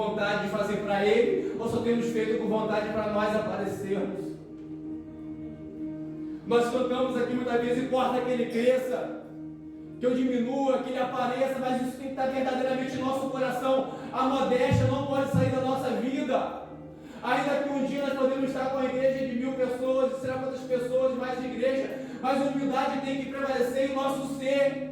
de fazer para Ele, ou só temos feito com vontade para nós aparecermos. Nós cantamos aqui muitas vezes: importa que Ele cresça, que eu diminua, que ele apareça, mas isso tem que estar verdadeiramente em nosso coração. A modéstia não pode sair da nossa vida. Ainda que um dia nós podemos estar com a igreja de 1000 pessoas, de será quantas pessoas, mais de igreja, mas a humildade tem que prevalecer em nosso ser.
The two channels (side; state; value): both; identical; correlation 1.00